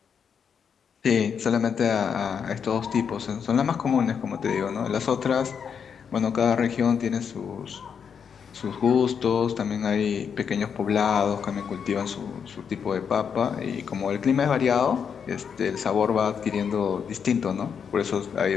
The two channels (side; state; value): right; quieter; 7.0 dB